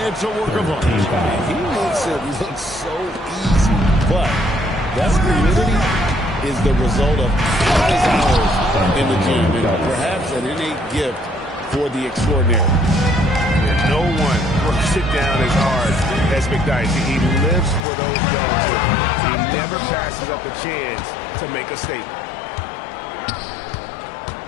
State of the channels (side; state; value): right; drops out; at 17.9 s